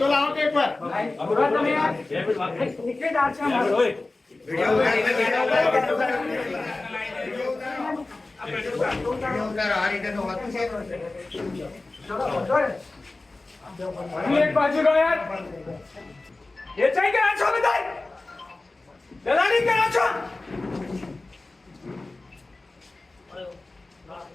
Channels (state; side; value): quieter; right; 3.2 dB